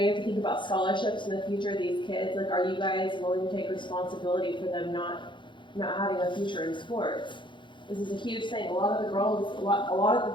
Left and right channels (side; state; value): right; late; 0.23 ms